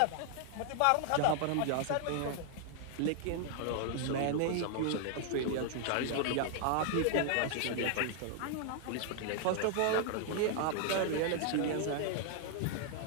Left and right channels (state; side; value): different; both; correlation 0.00